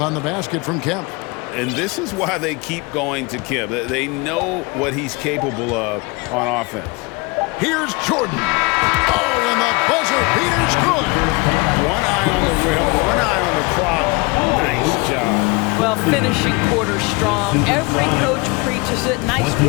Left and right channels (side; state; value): right; quieter; 26.7 dB